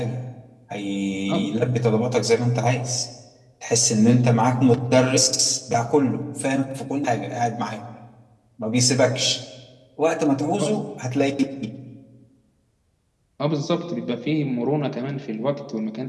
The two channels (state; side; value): identical; both; correlation 1.00